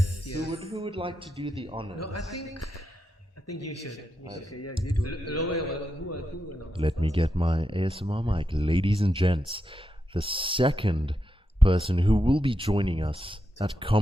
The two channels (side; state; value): both; normal; correlation 0.85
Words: Who would like to do the honors? No, I think you should. Okay, yeah, you do it. Who Let me get my ASMR mic. Ladies and gents, the second person who will be joining us at